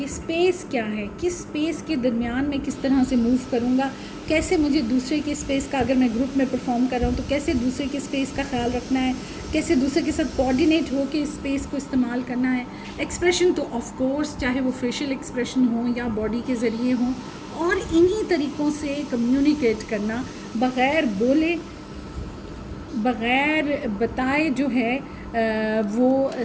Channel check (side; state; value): both; identical; correlation 1.00